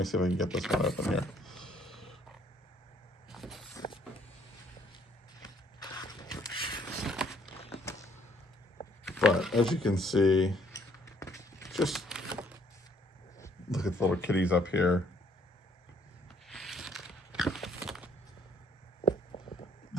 see if I can get this one open here. But as you can see, just look at the little kitties up here.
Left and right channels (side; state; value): both; normal; correlation 0.64